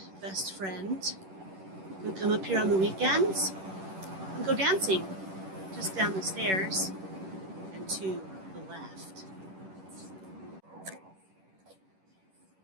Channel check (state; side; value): late; left; 10 ms